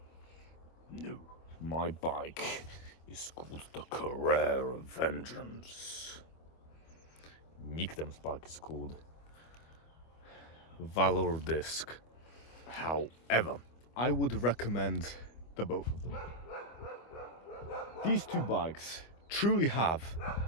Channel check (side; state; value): right; late; 25 ms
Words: No. My bike is called the Carrera Vengeance. Nikodem's bike is called Valor Disc. However, I would recommend the both of them. These two bikes truly have